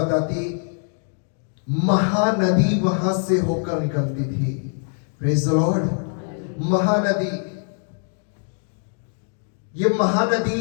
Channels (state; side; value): silent; right; 55 dB below the other